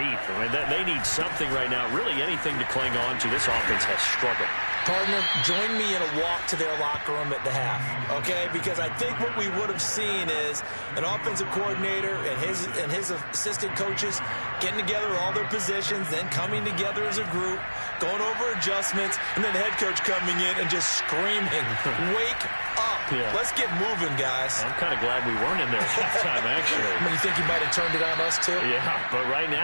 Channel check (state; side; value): inverted; both; correlation -1.00